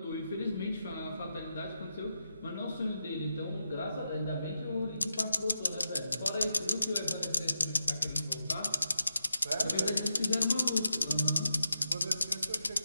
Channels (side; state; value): both; inverted; correlation -0.87